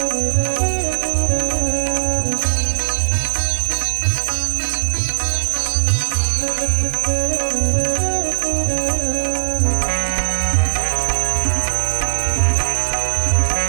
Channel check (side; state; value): left; silent; digital silence